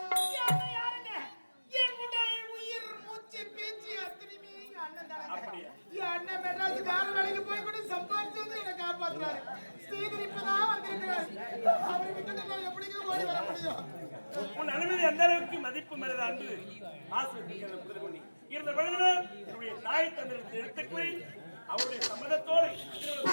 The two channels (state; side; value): inverted; both; correlation -1.00